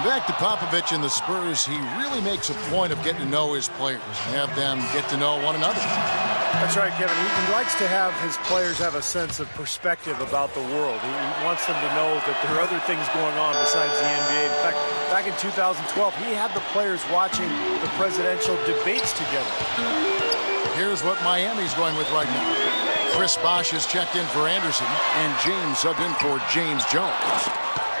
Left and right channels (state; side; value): inverted; both; correlation -1.00